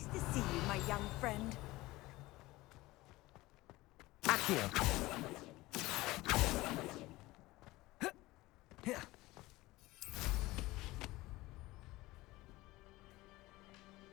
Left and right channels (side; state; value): right; quieter; 19.5 dB